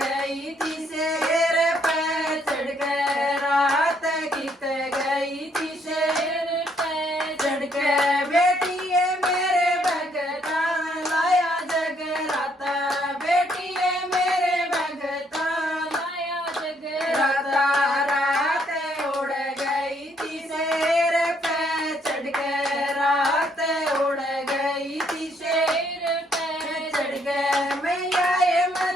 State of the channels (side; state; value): both; normal; correlation 0.69